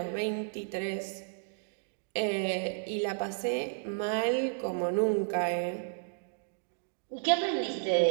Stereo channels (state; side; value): silent; left; digital silence